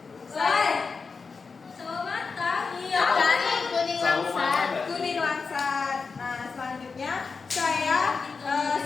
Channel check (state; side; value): quieter; right; 4.8 dB